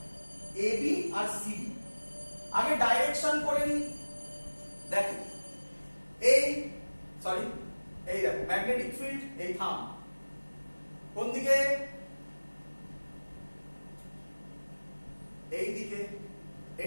ab আর cd। আগে ডাইরেকশন করে নি। দেখো এই দেখো ম্যাগনেটিক ফিল্ড, এই থাম্ব কোন দিকে? এই দিকে।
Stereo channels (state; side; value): inverted; both; correlation -1.00